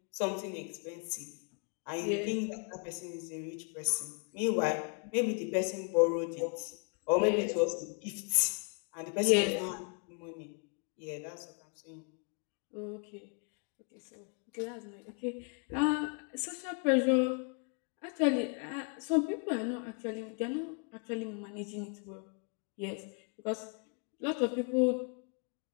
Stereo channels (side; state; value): right; quieter; 36.8 dB